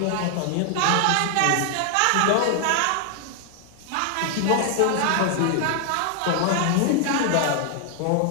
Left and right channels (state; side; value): different; both; correlation 0.00